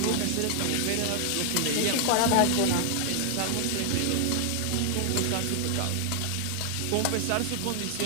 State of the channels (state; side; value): different; both; correlation 0.00